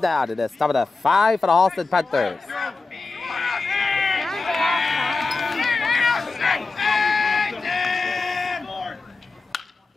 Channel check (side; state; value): right; quieter; 3.9 dB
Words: it is top of the 5 for the Holliston Panthers.